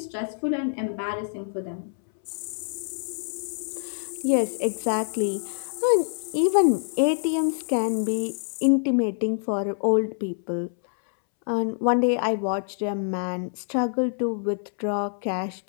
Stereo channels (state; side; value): silent; right; 61 dB below the other